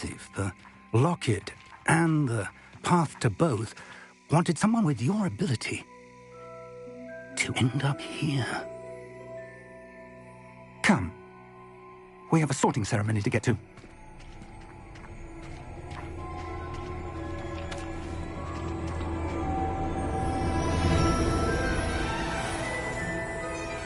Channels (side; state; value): both; identical; correlation 1.00